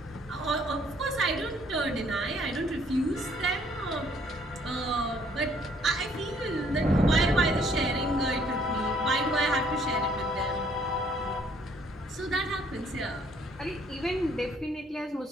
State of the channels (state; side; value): normal; both; correlation 0.63